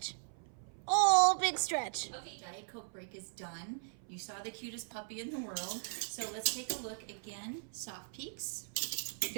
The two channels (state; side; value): silent; left; 52 dB below the other